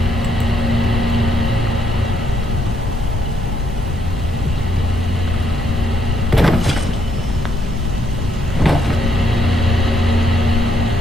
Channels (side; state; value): both; normal; correlation 0.73